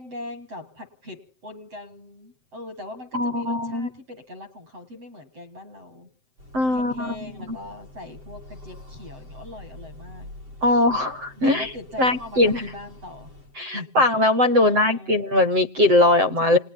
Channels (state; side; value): late; left; 7.8 ms